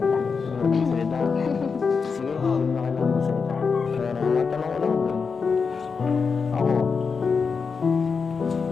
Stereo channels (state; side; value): quieter; right; 5.3 dB